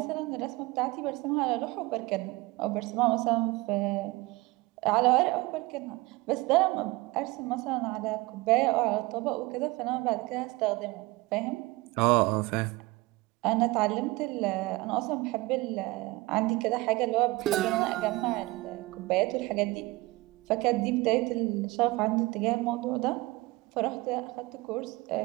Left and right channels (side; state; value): left; quieter; 21.7 dB